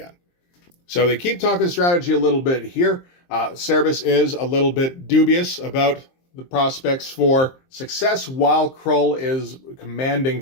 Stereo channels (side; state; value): right; late; 23 ms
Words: So they keep talking strategy a little bit here. Cerebus is a little bit dubious about the prospects for success while Krull is commanding